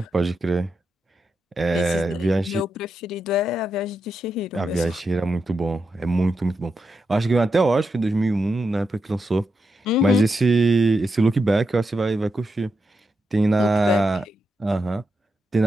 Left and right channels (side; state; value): both; normal; correlation 0.86